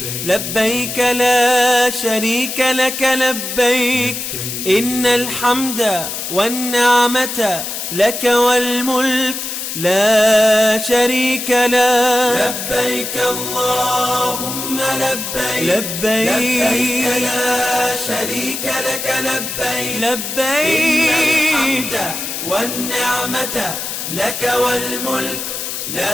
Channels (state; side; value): noise; left; hiss, 5 dB below the sound